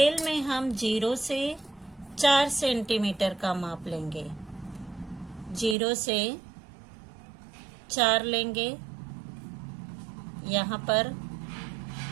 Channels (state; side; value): drops out; left; at 5.8 s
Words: में हम 0 से 4 सेंटीमीटर का माप लेंगे। 0 से 4 लेंगे, यहाँ पर